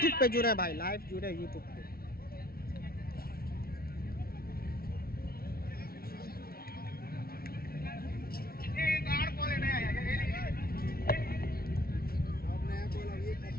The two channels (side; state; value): right; late; 0.44 ms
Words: पे जुड़े भाई, लाइव जुड़े यूट्यूब पे।